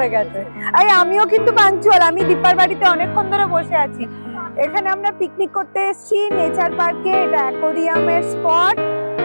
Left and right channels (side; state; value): both; inverted; correlation -1.00